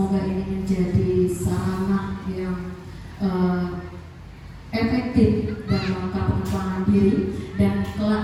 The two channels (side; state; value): both; identical; correlation 1.00